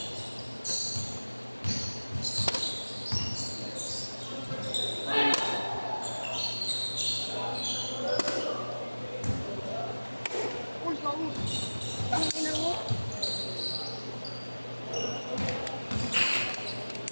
Uy, gawo. Ang ina mo.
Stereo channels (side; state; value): both; inverted; correlation -1.00